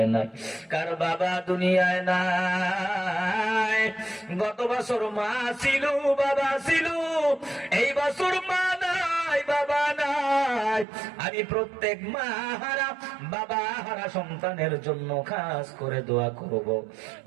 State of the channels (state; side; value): drops out; left; at 10.9 s